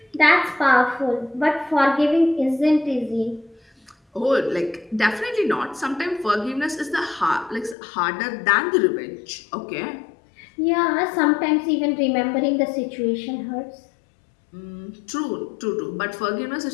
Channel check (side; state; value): right; drops out; at 7.8 s